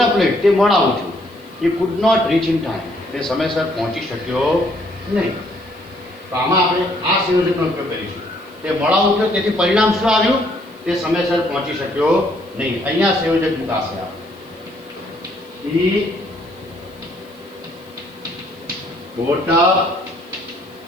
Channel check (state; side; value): noise; left; hiss, 30 dB below the sound